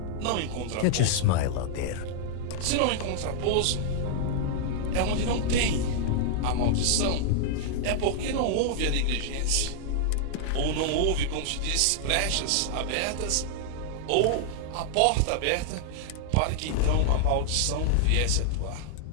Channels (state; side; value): different; both; correlation -0.01